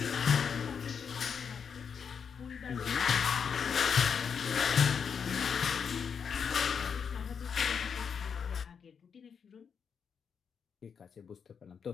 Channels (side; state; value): right; quieter; 6.7 dB